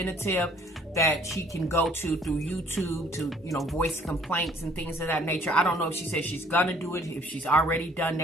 that she can go to through YouTube to, you know, voice complaints and things of that nature. I don't know if she says she's gonna do it, if she's already done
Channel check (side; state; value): both; normal; correlation 0.58